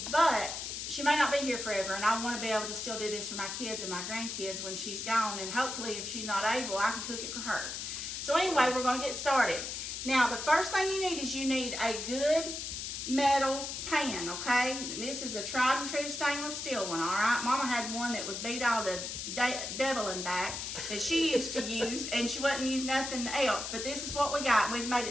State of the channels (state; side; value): noise; left; hiss, 5 dB below the sound